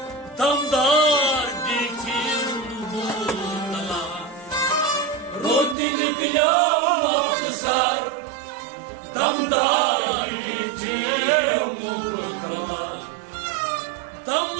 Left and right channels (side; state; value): left; drops out; at 5.8 s